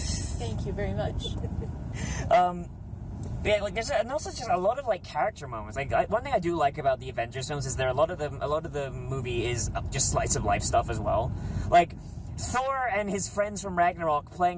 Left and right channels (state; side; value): identical; both; correlation 1.00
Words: you very much. Yeah, like there's also just a lot of like character moments. Like one thing I do like about the Avengers films is a lot of the movie is just slice of life stuff as well. Like Thor and his friends from Ragnarok